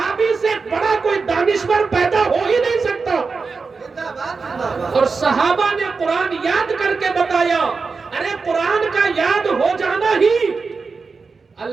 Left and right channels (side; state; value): left; quieter; 4.6 dB